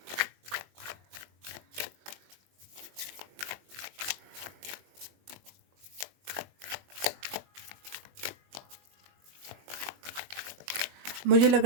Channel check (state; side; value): late; left; 21 ms